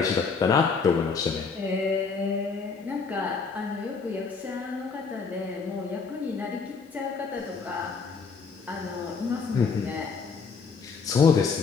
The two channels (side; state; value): right; quieter; 5.1 dB